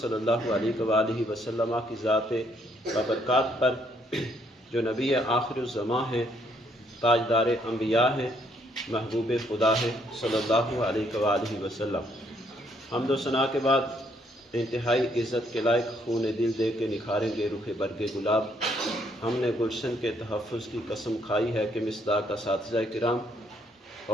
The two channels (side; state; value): both; normal; correlation 0.70